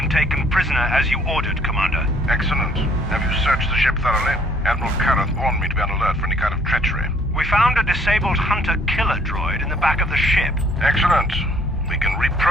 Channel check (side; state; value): both; normal; correlation 0.61